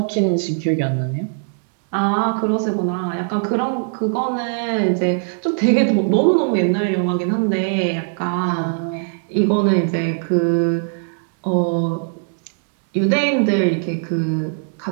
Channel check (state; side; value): silent; left; 66 dB below the other